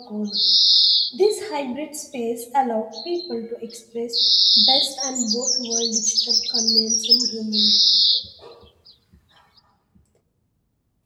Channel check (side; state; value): both; identical; correlation 1.00